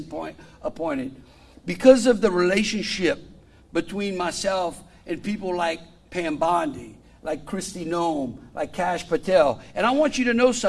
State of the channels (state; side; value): identical; both; correlation 1.00